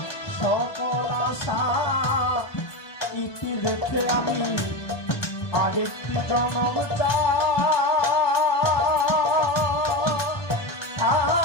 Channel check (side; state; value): right; late; 1.2 ms